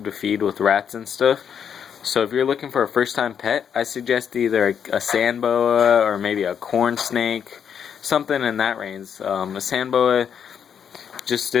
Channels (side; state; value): right; quieter; 7.9 dB